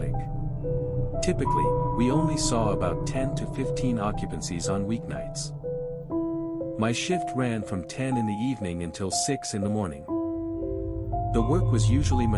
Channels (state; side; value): identical; both; correlation 1.00